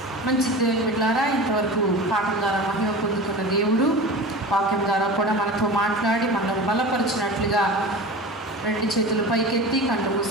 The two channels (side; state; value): both; normal; correlation 0.32